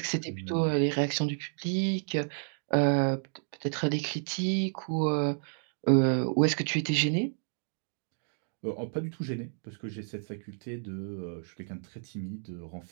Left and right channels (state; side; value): silent; left; digital silence